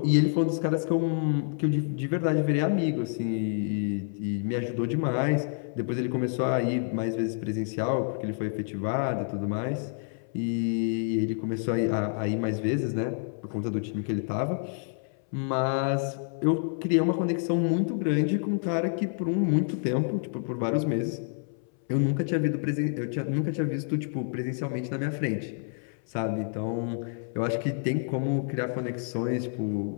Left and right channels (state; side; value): silent; right; 59 dB below the other